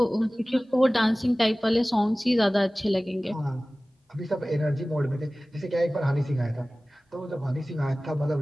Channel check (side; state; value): both; normal; correlation 0.98